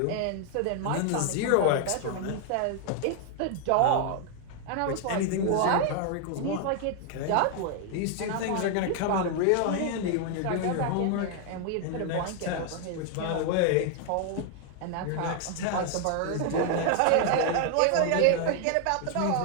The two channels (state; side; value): different; both; correlation 0.00